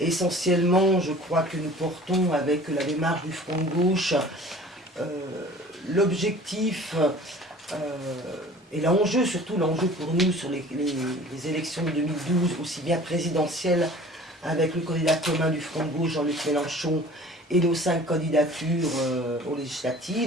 je crois que nous portons avec la démarche du Front de Gauche l'objectif et l'enjeu, surtout l'enjeu pour nous sur les élections de 2012, aussi bien présidentielles avec le candidat commun du Front de Gauche, Jean-Luc Mélenchon, et nos 5 candidatures aux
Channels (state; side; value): normal; both; correlation 0.46